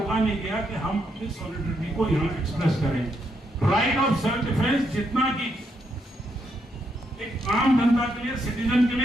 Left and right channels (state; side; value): normal; both; correlation 0.78